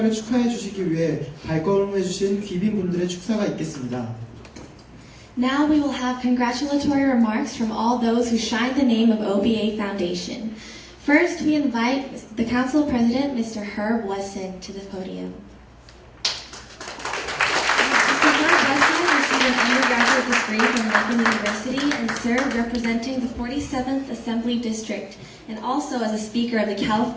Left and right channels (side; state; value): both; identical; correlation 1.00